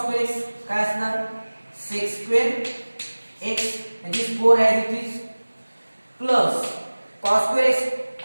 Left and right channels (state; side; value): inverted; both; correlation -1.00